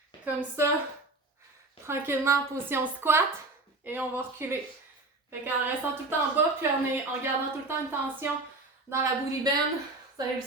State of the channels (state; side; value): quieter; left; 3.1 dB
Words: comme ça, tranquillement en position squat. Et on va reculer. Fait qu'en restant tout le temps en bas, puis en gardant tout le temps une tension dans la booty bend, vous allez le